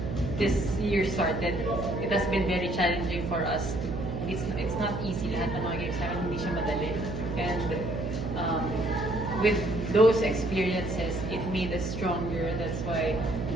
this year started, it has been very challenging for us. It's not easy. Lahat ng mga games namin, hindi siya madali. And with those experiences, it made us stronger. That's why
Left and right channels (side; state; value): right; noise; hum, 5 dB below the sound